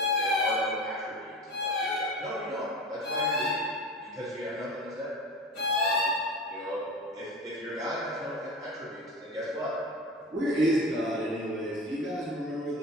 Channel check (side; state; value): both; normal; correlation 0.31